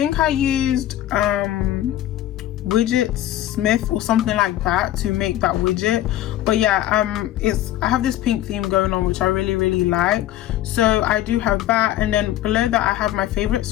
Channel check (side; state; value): right; quieter; 13.4 dB